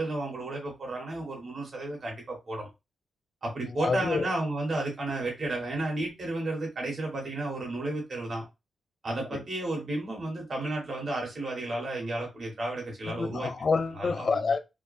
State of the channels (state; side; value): normal; both; correlation 0.85